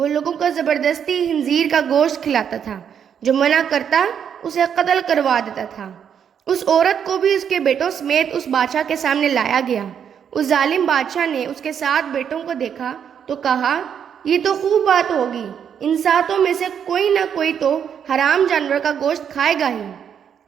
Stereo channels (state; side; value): quieter; left; 8.1 dB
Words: لوگوں کو زبردستی خنزیر کا گوشت کھلاتا تھا، جو منع کرتا اسے قتل کروا دیتا تھا۔ اس عورت کو بھی اس کے بیٹوں سمیت اس بادشاہ کے سامنے لایا گیا۔ اس ظالم بادشاہ نے اس کے 7 بیٹوں کو دیکھا تو کہا، یہ تو خوب بات ہوگی، ان 7 میں سے کوئی نہ کوئی تو حرام جانور کا گوشت کھائے گا ہی۔